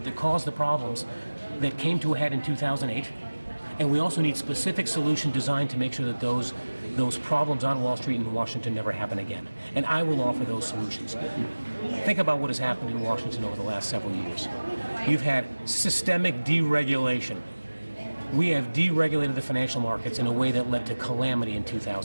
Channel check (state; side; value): inverted; both; correlation -1.00